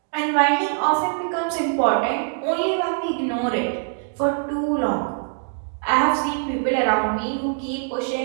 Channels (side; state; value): left; silent; digital silence